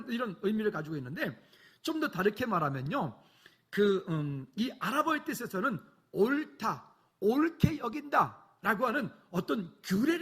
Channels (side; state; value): both; identical; correlation 1.00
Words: 이런 의미를 가지고 있는데, 좀 더 다르게 말하면요, 이 아랍어의 뜻에서는 옳다, 옳게 여긴다라고 하는 어떤